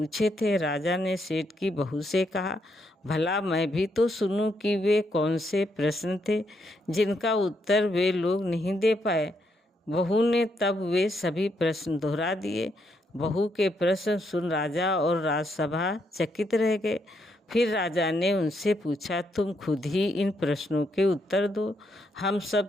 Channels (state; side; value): normal; both; correlation 0.77